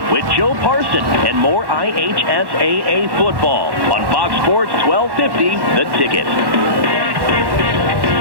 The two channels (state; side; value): late; left; 1.1 ms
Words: with Joe Parson and more IHSAA football on Fox Sports 1250, The Ticket.